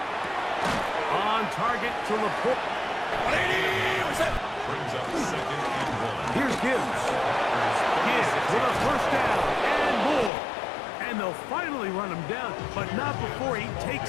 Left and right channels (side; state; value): right; drops out; at 10.3 s